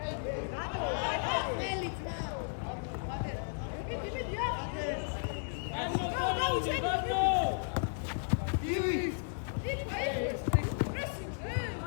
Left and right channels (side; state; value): right; silent; digital silence